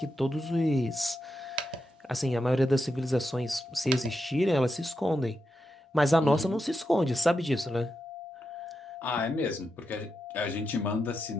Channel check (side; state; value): both; normal; correlation 0.87